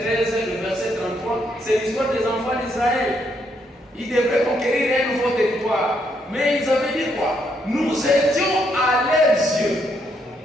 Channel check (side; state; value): both; normal; correlation 0.75